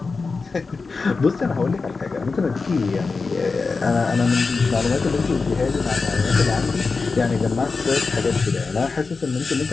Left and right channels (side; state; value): right; quieter; 4.3 dB